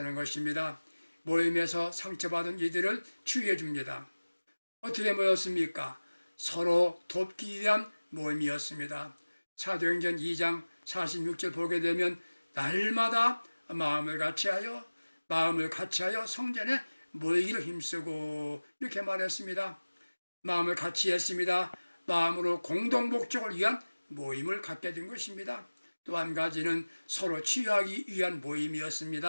것입니다. 모임에서 상처받은 이들을 치유해 줍니다. 어떻게 모였습니까? 서로 돕기 위한 모임이었습니다. 사도행전 2장 46절 보게 되면 날마다 마음을 같이하여 성전에 모이기를 힘쓰고 이렇게 말했습니다. 마음을 같이 했습니다. 마음으로 공동 목적을 위한 모임을 갖게 된 것입니다. 또 한 가지는 서로 치유하기 위한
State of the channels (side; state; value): both; inverted; correlation -1.00